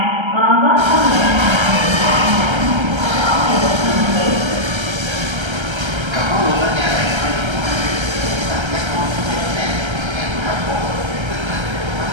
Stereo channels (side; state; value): left; late; 1.3 ms